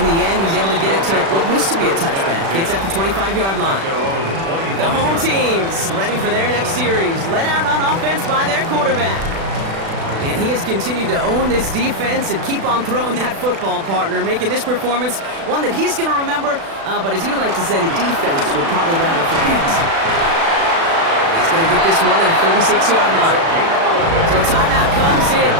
the end, he's able to get it to what used to be a touchback. It's at the 25-yard line. The home team's ready for their next series, led out on offense by their quarterback. And he has continued to own this defense and keep on throwing that football, partner, making this performance one that he's going to remember, but as you like to say, the defense would probably rather forget. He's going to get this one at the 36-yard line. So timeout comes in.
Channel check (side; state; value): left; late; 36 ms